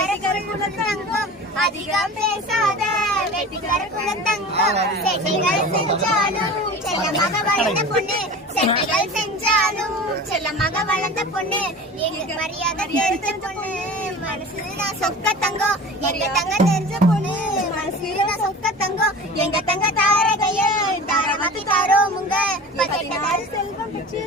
குலத்தங்கம், அதிகம் பேசாத வெட்டிக்கார குலத்தங்கம். செட்டிகள் செஞ்சாலும் செல்லமாக வளர்ந்த பொண்ணு, செட்டிகள் செஞ்சாலும் செல்லமாக வளர்ந்த பொண்ணு, எங்களுக்கு மரியாதை தெரிஞ்ச பொண்ணு, மனசுதான் சொக்க தங்கம். எங்க தங்க தெரிஞ்ச பொண்ணு, மனசுதான் சொக்க தங்கம். எங்க தங்க தாரகைய தாரமாக்கி தாரோமுங்க, செல்வம் பெற்று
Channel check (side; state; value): both; normal; correlation 0.36